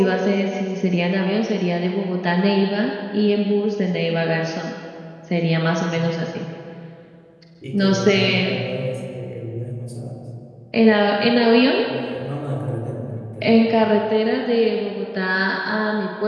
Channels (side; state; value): both; identical; correlation 1.00